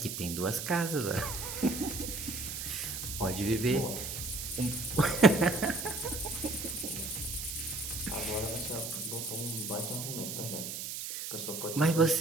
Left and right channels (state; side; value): noise; right; hiss, 5 dB below the sound